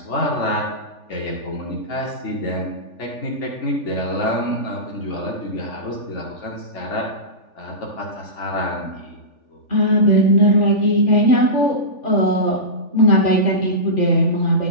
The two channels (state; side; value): late; right; 3.4 ms